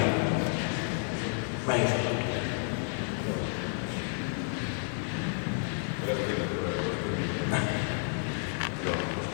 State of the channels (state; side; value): silent; right; 57 dB below the other